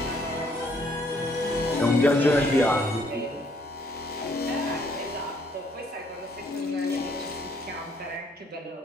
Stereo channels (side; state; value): both; normal; correlation 0.66